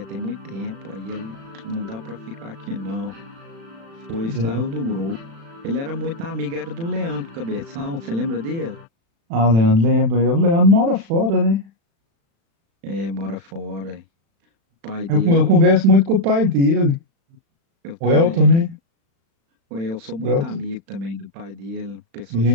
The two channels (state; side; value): late; left; 36 ms